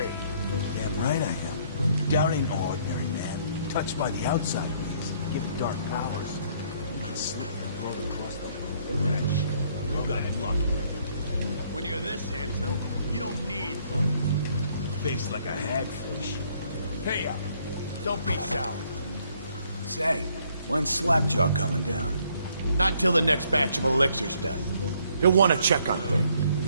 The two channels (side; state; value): both; inverted; correlation -0.65